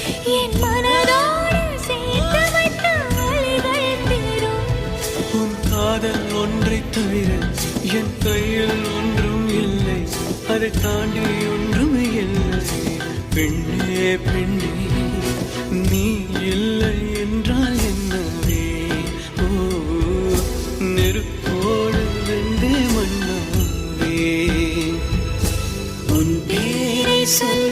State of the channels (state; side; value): identical; both; correlation 1.00